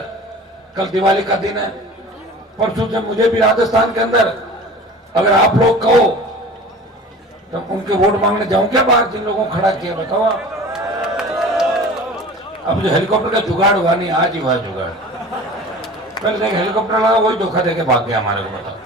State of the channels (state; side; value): normal; both; correlation 0.40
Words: कल दिवाली का दिन है, परसों से मुझे भी राजस्थान के अंदर अगर आप लोग कहो तो उनके वोट मांगने जाऊं क्या बाहर, जिन लोगों को खड़ा किया बताओ आप। अब जो हेलीकॉप्टर का जुगाड़ हुआ नहीं, आज ही हुआ जुगाड़। पहले देख हेलीकॉप्टर लगा, वही धोखा देके भाग गया हमारे को।